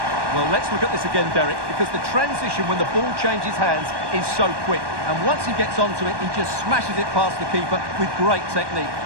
Well, let's look at this again, Derek, because the transition when the ball changes hands is so quick. And once he gets onto it, he just smashes it past the keeper with great technique.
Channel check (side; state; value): left; late; 1.2 ms